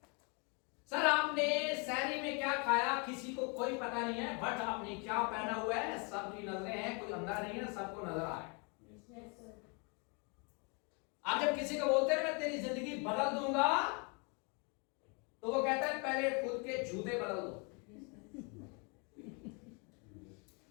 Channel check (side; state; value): right; quieter; 33.6 dB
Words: सर आपने सैरी में क्या खाया किसी को कोई पता नहीं है, बट आपने क्या पहना हुआ है सबकी नजरें हैं, कोई अंधा नहीं है, सबको नजर आ रहा है। आप जब किसी को बोलते हैं मैं तेरी जिंदगी बदल दूंगा, तो वो कहता है पहले खुद के जूते बदल दो।